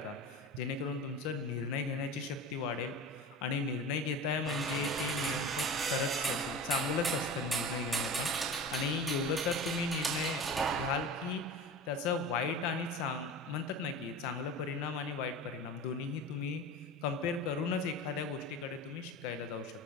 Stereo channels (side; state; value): both; normal; correlation 0.33